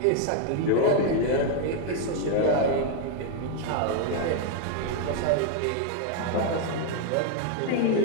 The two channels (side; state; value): both; different; correlation 0.00